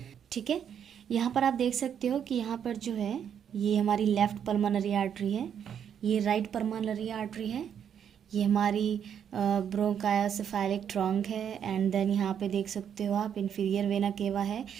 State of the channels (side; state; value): left; quieter; 8.5 dB